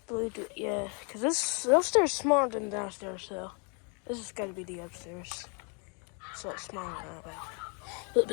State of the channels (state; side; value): quieter; right; 36.6 dB